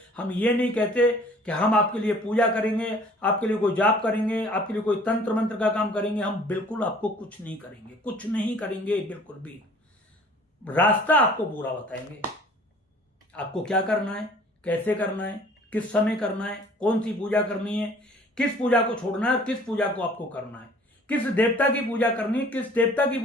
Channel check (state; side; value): normal; both; correlation 0.52